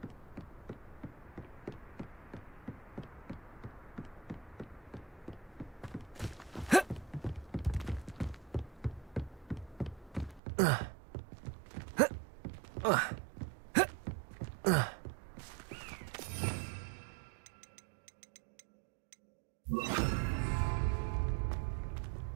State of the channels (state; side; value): drops out; left; at 10.4 s